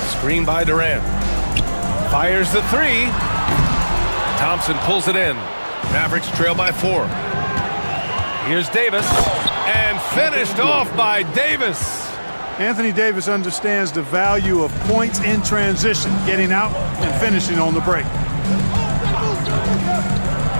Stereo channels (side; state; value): both; inverted; correlation -1.00